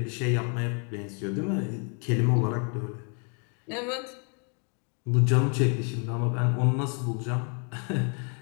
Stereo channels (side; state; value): right; quieter; 39.0 dB